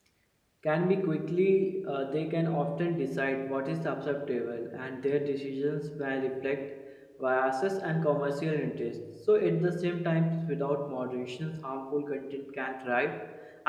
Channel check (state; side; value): identical; both; correlation 1.00